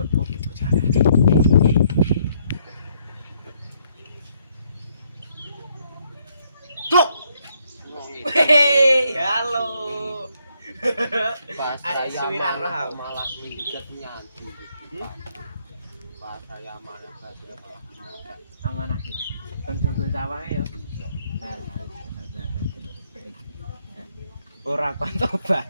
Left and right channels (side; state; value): both; inverted; correlation -0.71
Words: kopi bocah. Cok. Hei, halo. Pas Ada saya suwiran malah roh. malah minggat nyanti. Pas saya malah minggat. Amanah iki. Kon jogo sawahe yo. Ora kon tobat.